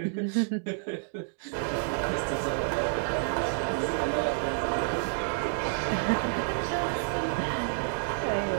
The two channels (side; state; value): left; silent; digital silence